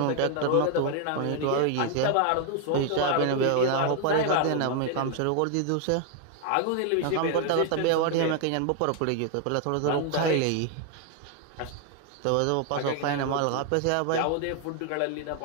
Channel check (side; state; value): both; different; correlation 0.01